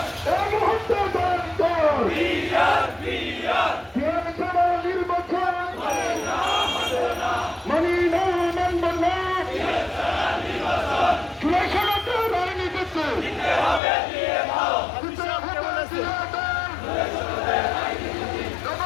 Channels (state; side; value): drops out; right; at 13.8 s